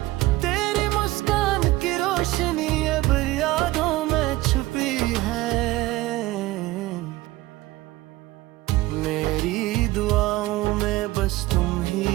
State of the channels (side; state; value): left; quieter; 18.2 dB